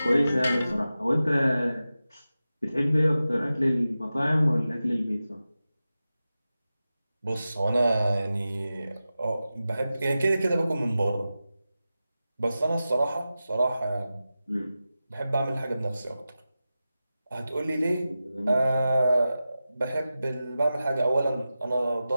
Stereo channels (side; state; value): both; inverted; correlation -0.93